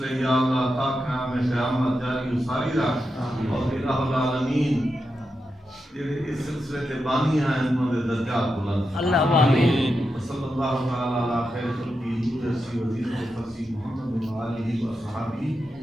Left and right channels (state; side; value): normal; both; correlation 0.87